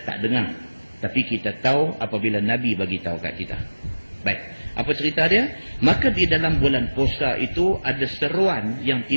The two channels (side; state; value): both; inverted; correlation -1.00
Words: tak dengar, tapi kita tahu apabila Nabi bagi tahu kat kita. Baik, apa cerita dia? Maka di dalam bulan puasa itu ada seruan yang